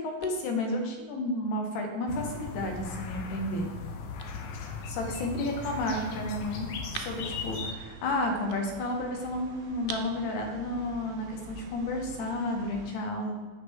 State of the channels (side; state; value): right; late; 13 ms